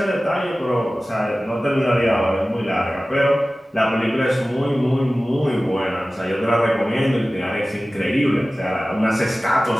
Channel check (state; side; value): normal; both; correlation 0.96